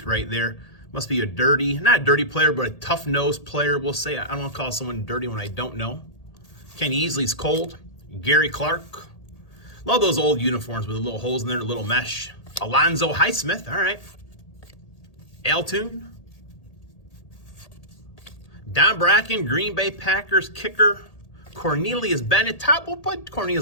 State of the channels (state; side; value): late; right; 1.8 ms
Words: right there. Must be a not a dirty player, but a tough-nosed player, we'll say. I don't want to call someone dirty when I don't know. Kenny Easley's cold. Gary Clark. Love those old uniforms with the little holes in there, the little mesh. Alonzo Highsmith, all right. Altoon. Don Bracken, Green Bay Packers kicker. Cornelius Bennett, we'll put